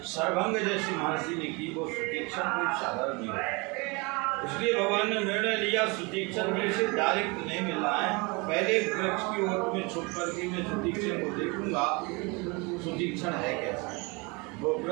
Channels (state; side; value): quieter; left; 28.2 dB